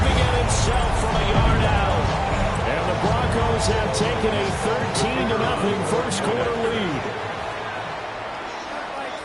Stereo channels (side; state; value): both; identical; correlation 1.00